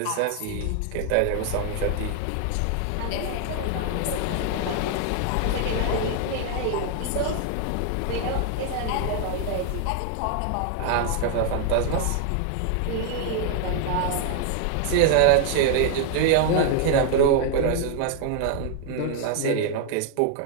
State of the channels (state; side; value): different; both; correlation 0.00